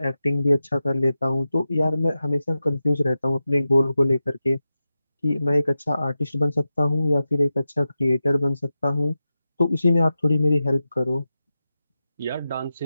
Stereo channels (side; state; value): both; inverted; correlation -0.92